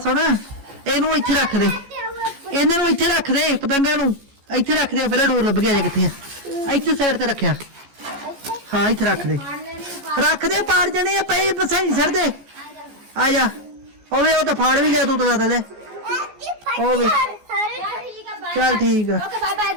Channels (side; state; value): left; late; 14 ms